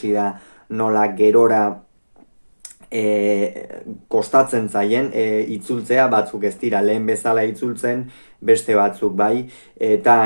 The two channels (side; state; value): both; inverted; correlation -1.00